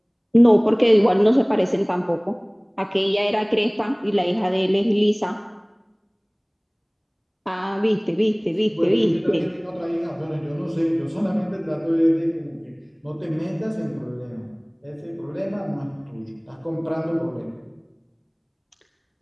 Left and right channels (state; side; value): identical; both; correlation 1.00